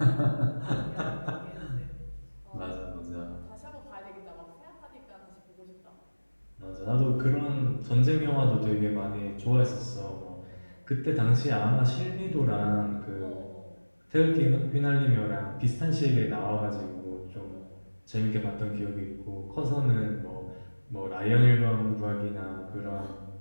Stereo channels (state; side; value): inverted; both; correlation -1.00